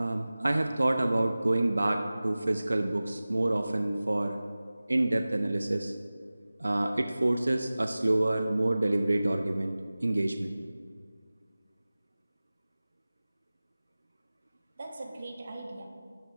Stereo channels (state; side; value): inverted; both; correlation -0.98